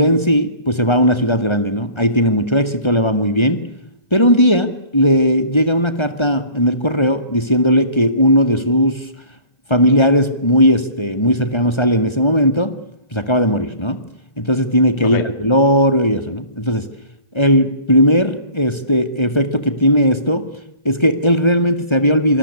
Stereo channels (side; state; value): right; late; 1.3 ms